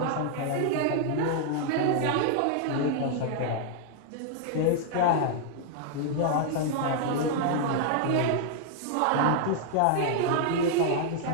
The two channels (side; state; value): both; different; correlation -0.01